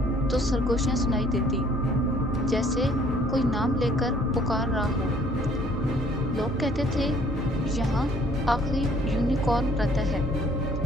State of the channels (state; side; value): normal; both; correlation 0.59